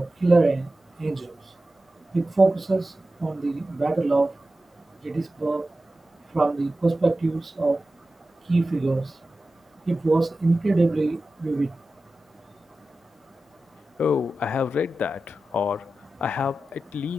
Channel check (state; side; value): normal; both; correlation 0.94